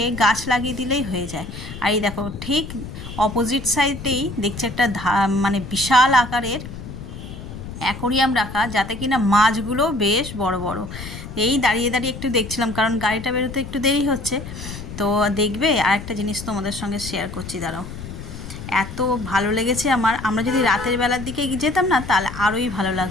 গাছ লাগিয়ে দিলেই হয়ে যায়। আর এই দেখো ঠিক অপোজিট সাইডেই দেখছি একটা মানে বিশাল আকারের অ্যাকোরিয়াম রাখা, যাতে কিনা মাছগুলো বেশ বড় বড়। এই দাঁড়িয়ে দাঁড়িয়ে একটু দেখছিলাম, কারণ গাড়িটা বেরোতে একটু দেরি হচ্ছে। তো দেখবে আর একটা জিনিস তোমাদের সঙ্গে শেয়ার করছি, দাঁড়াও। এত ভালো লেগেছে আমার, আমরা যদি রাতের বেলার দিকে যেতাম না তাহলে আরোই ভালো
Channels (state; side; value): noise; left; rumble, 11 dB below the sound